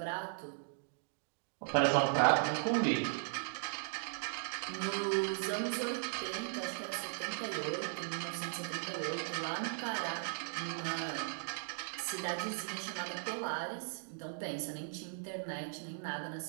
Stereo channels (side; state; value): left; silent; digital silence